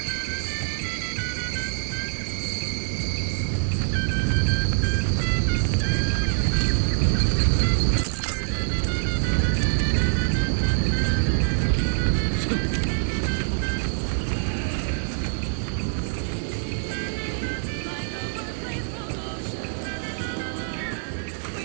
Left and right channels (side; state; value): left; silent; digital silence